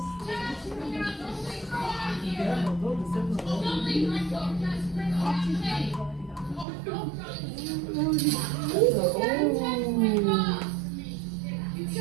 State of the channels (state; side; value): drops out; left; at 6.7 s